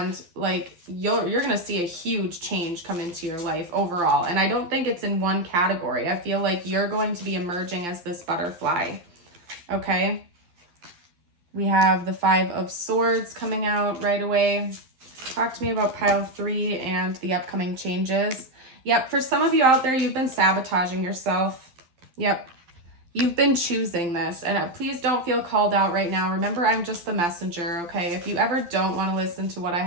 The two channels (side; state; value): left; late; 12 ms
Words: like, you're gonna see a huge change come into your life overall. And I don't think it's in one category. I feel like you're going to be emerging as this butterfly. Okay. We have the 5 of Swords coming out right away. Talk to me about pile 3 and the upcoming changes. Yep, for some of you out there, you've been sabotaging yourself. Yep, you've been choosing this. And please don't feel called out right now. Remember, I'm just the messenger, okay? If you ever don't want to listen to what I